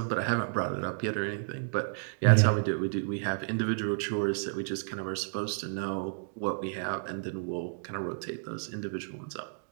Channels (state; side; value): silent; left; digital silence